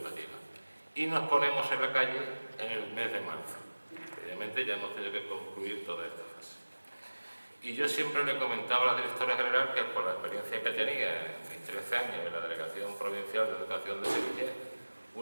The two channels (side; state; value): both; inverted; correlation -1.00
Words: Y nos ponemos en la calle en el mes de marzo. Obviamente ya hemos tenido que concluir toda esta fase. Y yo siempre le comentaba a la directora general que por la experiencia que tenía en mis 13 años en la Delegación Provincial de Educación de Sevilla,